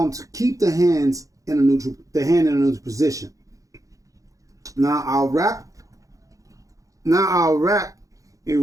to keep the hand in a neutral position. Now I'll wrap a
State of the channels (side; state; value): left; late; 0.16 ms